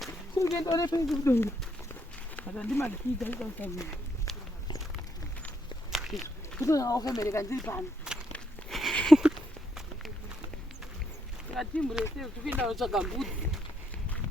kungenda ne pesi mudondo ata ndimakita ikasamira kutona wakabereka ndiri pano timu rese tikuenda kutsvaga mbudzi.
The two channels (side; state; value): both; normal; correlation 0.76